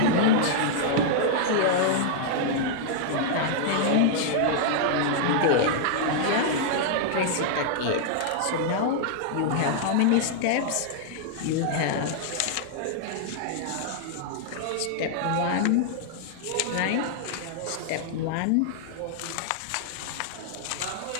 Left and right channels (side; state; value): both; different; correlation -0.01